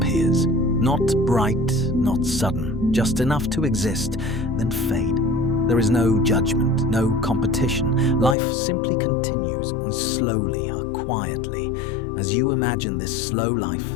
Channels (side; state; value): right; drops out; at 8.3 s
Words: Not bright, not sudden, just enough to exist, then fade. There is no judgment, no competition. Life simply continues, slowly or quietly. As you imagine this slow life,